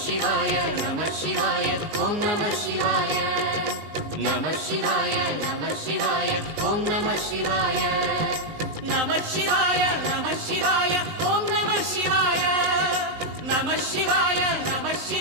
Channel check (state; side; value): late; left; 19 ms